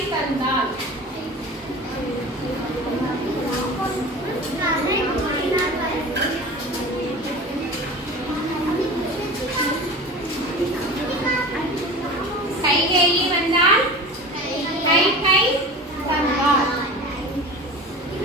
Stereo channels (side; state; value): both; normal; correlation 0.35